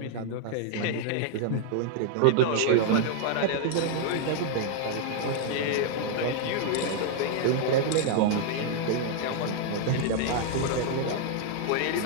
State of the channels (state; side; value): different; both; correlation 0.00